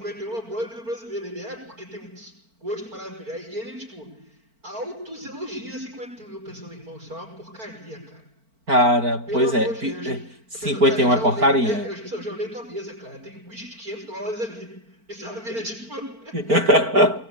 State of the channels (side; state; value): left; late; 4.4 ms